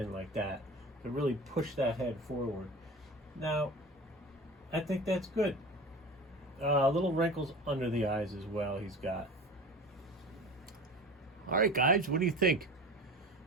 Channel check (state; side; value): normal; both; correlation 0.35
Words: like that to really push that head forward. Now, I think that's good. Little wrinkles under the eyes as well he's got. All right, guys, what do you think?